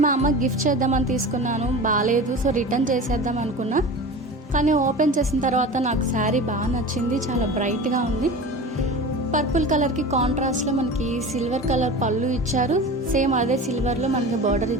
మా అమ్మకి గిఫ్ట్ చేద్దామని తీసుకున్నాను, బాగాలేదు, సో రిటర్న్ చేసేద్దాం అనుకున్నా. కానీ ఓపెన్ చేసిన తర్వాత నాకు శారీ బాగా నచ్చింది, చాలా బ్రైట్గా ఉంది. పర్పుల్ కలర్కి కాంట్రాస్ట్లో మనకి సిల్వర్ కలర్ పళ్ళు ఇచ్చారు. సేమ్ అదే సిల్వర్లో మనకి బార్డర్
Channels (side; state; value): both; normal; correlation 0.33